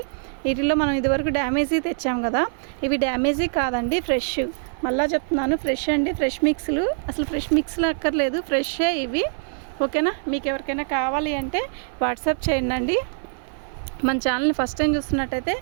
వీటిల్లో మనం ఇదివరకు డ్యామేజీ తెచ్చాం కదా, ఇవి డ్యామేజీ కాదండి, ఫ్రెష్. మళ్ళీ చెప్తున్నాను, ఫ్రెష్ అండి. ఫ్రెష్ మిక్స్లు, అసలు ఫ్రెష్ మిక్స్లు అక్కర్లేదు, ఫ్రెషే ఇవి. ఓకేనా? మీకు ఎవరికైనా కావాలి అంటే వాట్సాప్ చేయండి. మన ఛానల్ని ఫస్ట్ టైం చూస్తున్నట్టయితే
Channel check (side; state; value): left; silent; 57 dB below the other